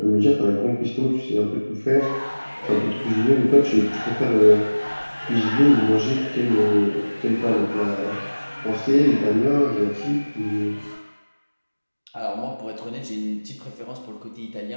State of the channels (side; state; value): both; inverted; correlation -1.00